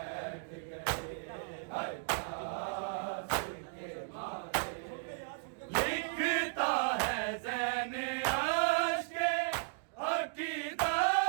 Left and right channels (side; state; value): left; silent; digital silence